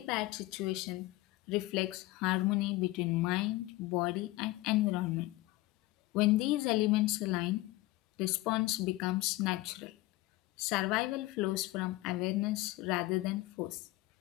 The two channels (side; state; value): right; quieter; 19.1 dB